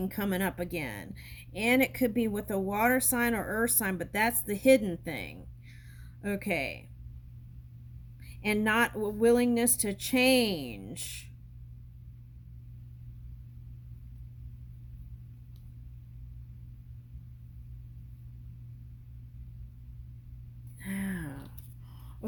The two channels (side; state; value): both; identical; correlation 1.00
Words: coming up again. And it could be with a water sign or earth sign, but that's the hidden thing. Okay. And not willingness to change.